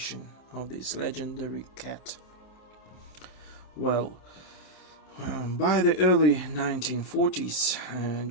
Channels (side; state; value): right; late; 27 ms